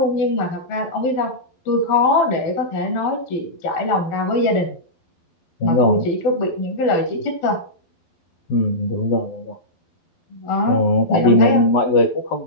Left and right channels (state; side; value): late; right; 12 ms